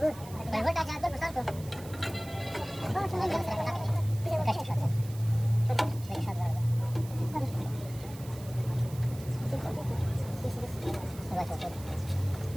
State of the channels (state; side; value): noise; right; hiss, 18 dB below the sound